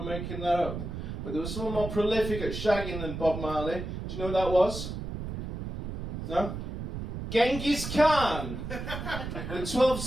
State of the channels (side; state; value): right; noise; rumble, 6 dB below the sound